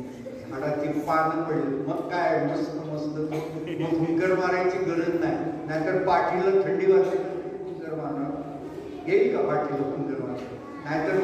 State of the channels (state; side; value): identical; both; correlation 1.00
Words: झाडाची पानं पडली. मग काय मस्त मग फुंकर मारायची गरज नाही. नाहीतर पाठीला थंडी वाजते, फुंकर मारणार येईल का? पाठीला फुंकर मारणार नाहीतर